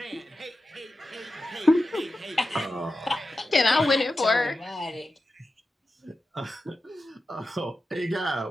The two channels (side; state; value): both; normal; correlation 0.92